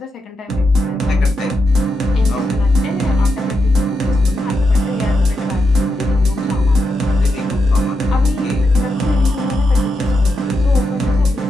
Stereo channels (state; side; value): normal; both; correlation 0.85